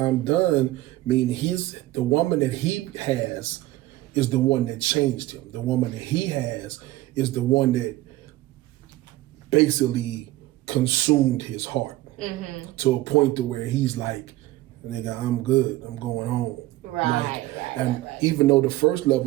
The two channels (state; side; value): quieter; left; 17.0 dB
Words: done mean the woman that he has is the one that changed him. The woman that he has is the one that basically consumed his heart to a point to where he's like, nigga, I'm good. I'm going home. Right. Even though the first